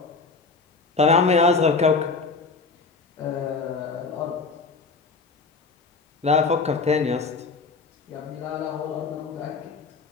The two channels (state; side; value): quieter; right; 4.4 dB